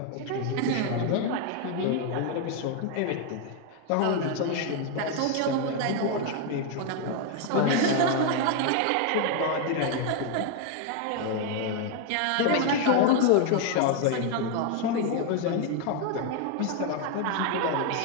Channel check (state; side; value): different; both; correlation 0.01